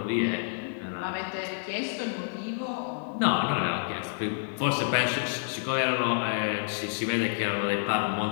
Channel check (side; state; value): right; silent; digital silence